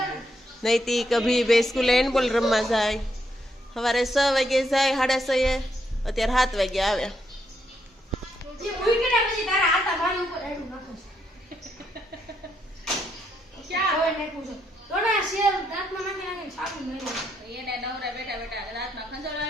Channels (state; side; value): normal; both; correlation 0.77